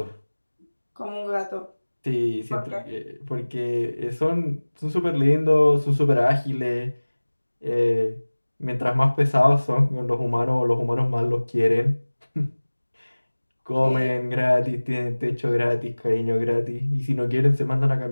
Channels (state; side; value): inverted; both; correlation -1.00